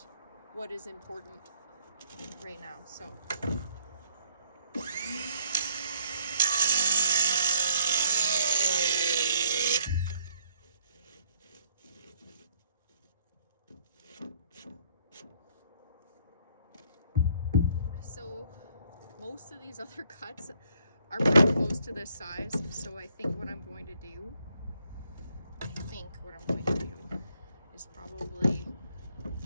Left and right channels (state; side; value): inverted; both; correlation -0.66